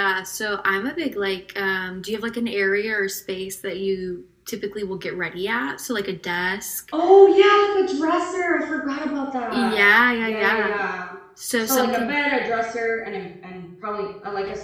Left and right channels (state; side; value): identical; both; correlation 1.00